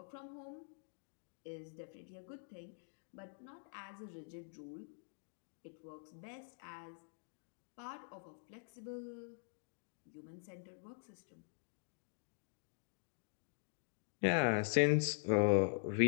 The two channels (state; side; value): silent; right; digital silence